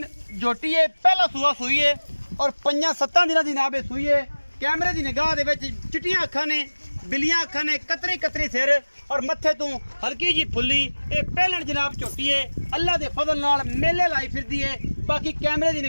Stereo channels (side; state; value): both; inverted; correlation -1.00